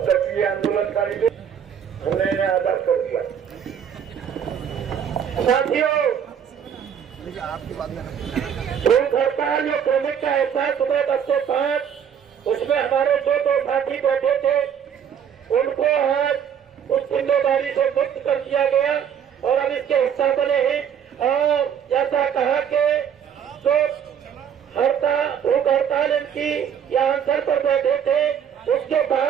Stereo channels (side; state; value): left; quieter; 8.4 dB